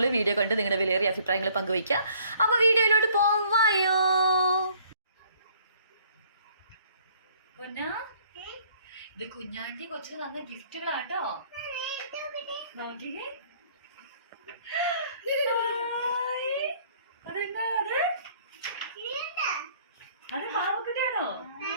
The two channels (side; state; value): both; inverted; correlation -0.59